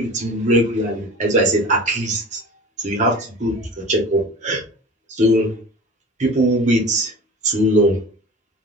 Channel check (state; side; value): normal; both; correlation 0.37